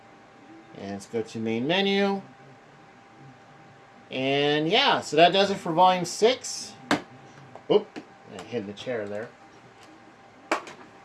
And let's go to main menu. And yeah, so that does it for Volume 6. Oop, I hit the chair there.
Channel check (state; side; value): identical; both; correlation 1.00